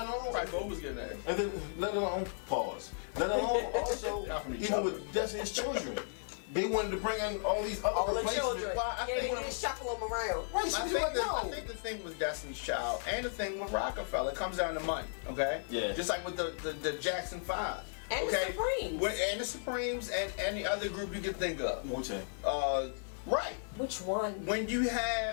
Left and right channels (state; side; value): silent; right; digital silence